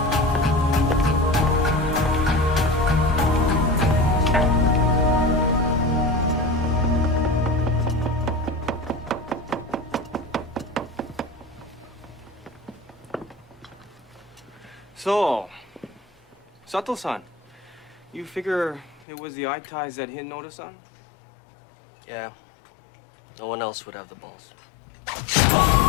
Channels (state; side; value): drops out; right; at 19.1 s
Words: So, Sato-san, you figure it was the eye ties that hit Noda-san? Yeah. No one else would have the balls.